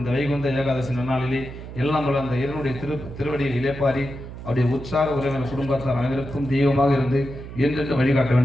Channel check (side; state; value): right; noise; hum, 12 dB below the sound